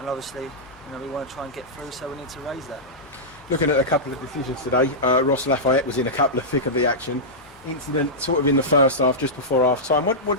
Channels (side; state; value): both; normal; correlation -0.11